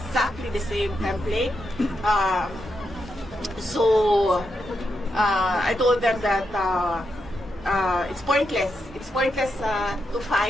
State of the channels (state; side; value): normal; both; correlation 0.84